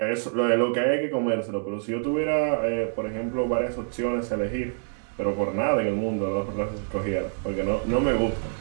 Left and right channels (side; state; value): left; silent; digital silence